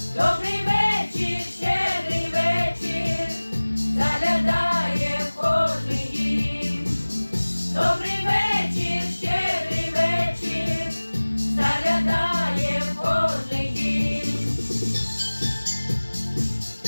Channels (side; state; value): both; inverted; correlation -1.00